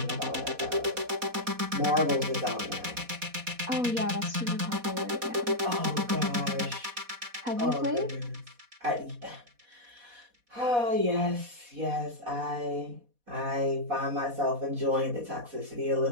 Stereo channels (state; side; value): late; left; 4.2 ms